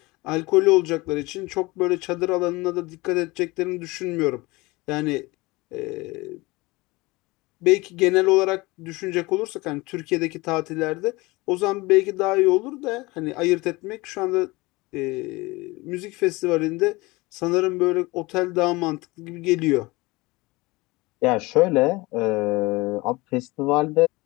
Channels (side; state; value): right; quieter; 22.6 dB